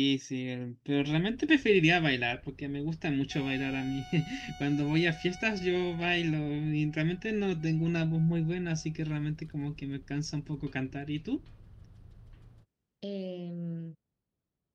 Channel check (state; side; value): identical; both; correlation 1.00